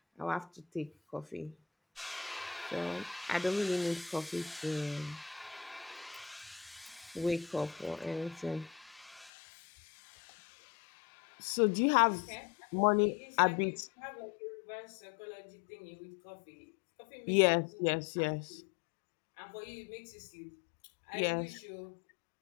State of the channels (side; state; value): right; drops out; at 9.3 s